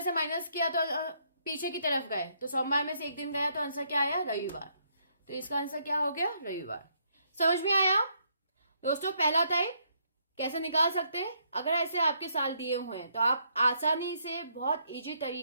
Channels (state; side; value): inverted; both; correlation -0.72